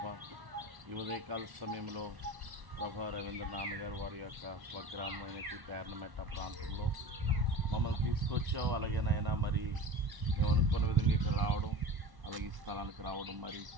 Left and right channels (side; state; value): left; late; 1.1 ms